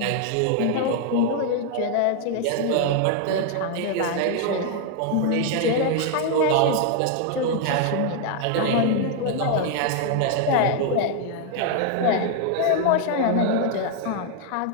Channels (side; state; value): both; different; correlation 0.00